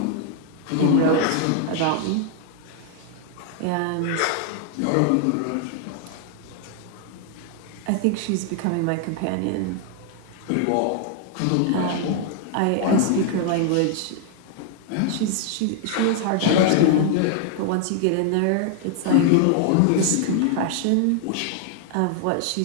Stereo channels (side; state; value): both; different; correlation 0.00